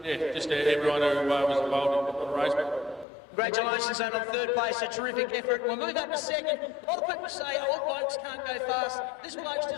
yeah, just everyone who was involved in the race. Congratulations on third place, a terrific effort. We'll move up to second. A lot of people say old blokes can't go fast. This bloke's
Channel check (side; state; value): right; drops out; at 3.1 s